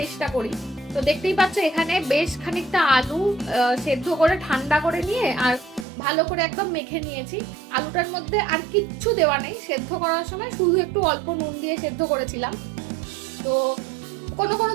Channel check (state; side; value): drops out; left; at 5.9 s